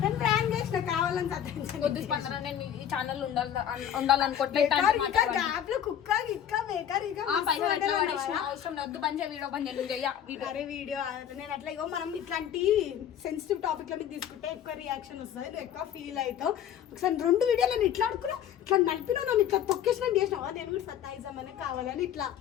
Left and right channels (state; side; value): quieter; right; 9.8 dB